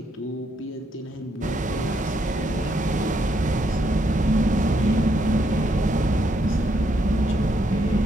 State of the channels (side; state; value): both; normal; correlation 0.75